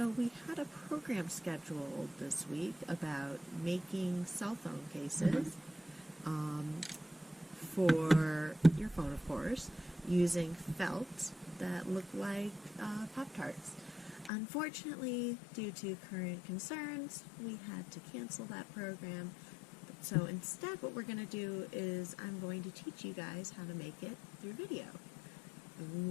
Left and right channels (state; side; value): drops out; right; at 14.3 s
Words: we had a program scheduled this week about making cell phone cases for your phone, of course, using felt that look like Pop-Tarts. Unfortunately, due to current concerns, we had to cancel that program. So instead, what we're going to do is I'm going to teach you guys how to make it through video.